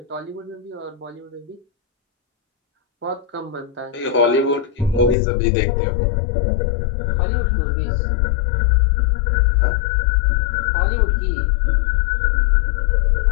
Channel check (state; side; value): drops out; right; at 5.2 s